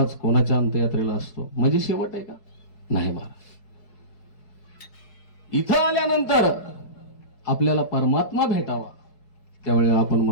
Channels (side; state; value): right; late; 4.7 ms